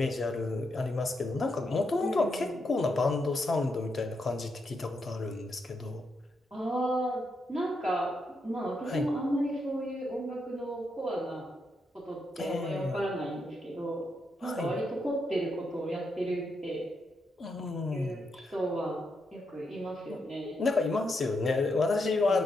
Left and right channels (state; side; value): normal; both; correlation 0.81